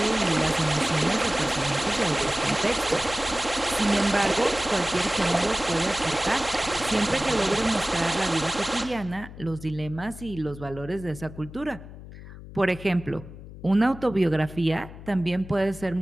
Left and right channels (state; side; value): noise; left; hum, 15 dB below the sound